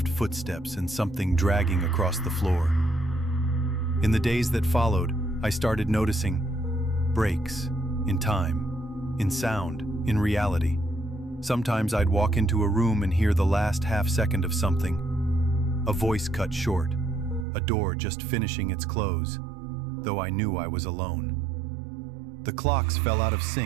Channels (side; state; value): left; drops out; at 17.4 s